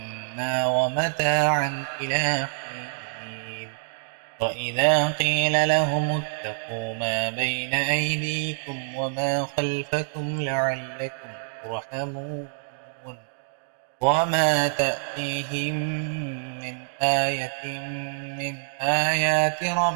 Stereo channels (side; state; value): left; silent; digital silence